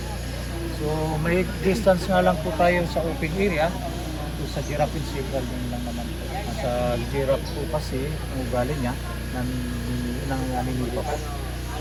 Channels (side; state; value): both; identical; correlation 1.00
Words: So may distance nga lang po tayo sa open area. So, sa giraffe and zebra din lang naman po. Sa giraffe po kasi ang ugali niya ng aninipa po.